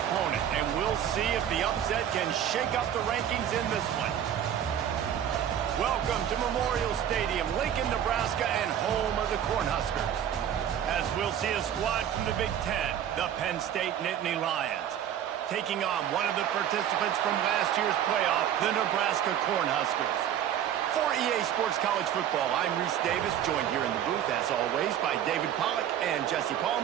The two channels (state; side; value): quieter; left; 10.0 dB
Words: and we'll see if the upset can shake up the rankings in this one. Welcome to Memorial Stadium, Lincoln, Nebraska, and home of the Cornhuskers. As we'll see a squad from the Big Ten, the Penn State Nittany Lions, taking on one of the participants from last year's playoff, the Nebraska Cornhuskers. For EA Sports College Football, I'm Reese Davis, joined here in the booth, as always, by David Pollack and Jesse